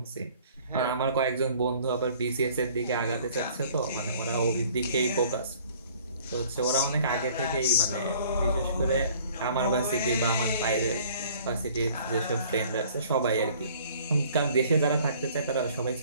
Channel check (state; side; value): inverted; both; correlation -0.54